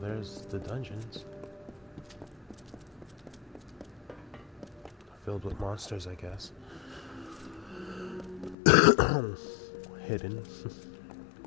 there's the dungeons. Filled with monsters, I guess. Hidden.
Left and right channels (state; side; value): drops out; right; at 8.6 s